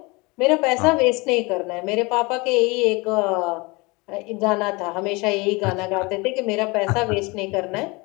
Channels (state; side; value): quieter; right; 25.9 dB